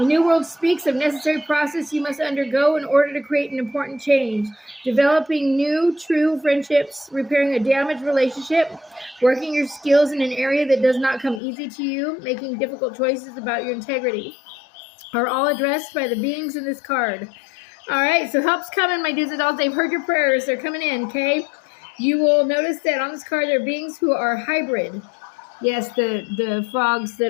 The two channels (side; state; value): right; drops out; at 11.4 s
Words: New World speaks of necessary process you must undergo in order to create an important change. Developing new, true friendships, repairing a damaged relationship, working your skills in an area that does not come easy to you, making difficult choices about your integrity, are all addressed by the beings in this card. All right, so help's coming, my dudes and dolls. They've heard your prayers. They're coming in, okay? You will notice that on this card there are beings who are hybrid. Yes, the frogs that